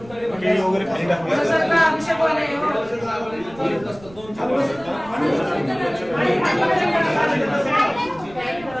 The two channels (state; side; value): noise; right; rumble, 21 dB below the sound